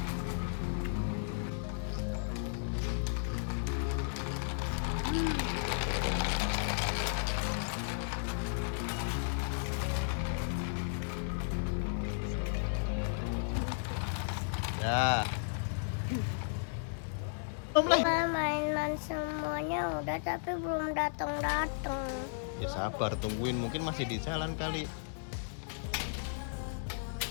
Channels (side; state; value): right; silent; digital silence